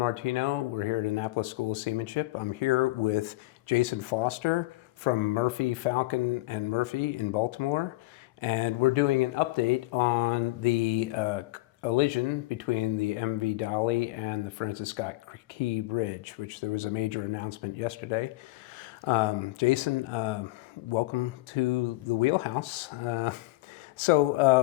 We're here at Annapolis School of Seamanship. I'm here with Jason Foster from Murphy, Falcon and Murphy in Baltimore. And we're doing an update on the collision between the MV Dali and the Francis Scott Key Bridge, which there was a major announcement yesterday. Jason, welcome to the Wheelhouse.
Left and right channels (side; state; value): right; quieter; 19.8 dB